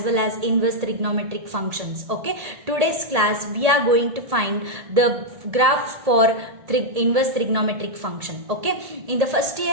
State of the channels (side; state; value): left; late; 1.8 ms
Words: well as inverse trigonometric functions. Okay, today's class we are going to find the graph for inverse trigonometric function. Okay, in the first